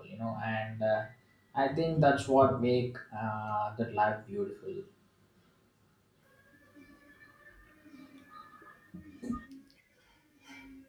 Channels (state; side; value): identical; both; correlation 1.00